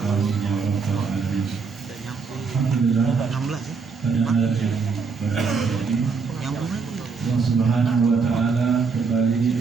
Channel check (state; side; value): quieter; left; 5.1 dB